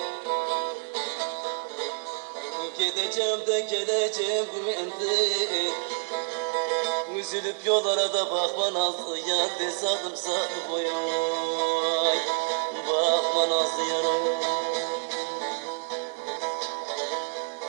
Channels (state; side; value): silent; left; digital silence